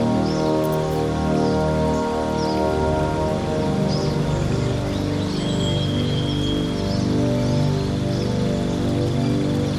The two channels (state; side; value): identical; both; correlation 1.00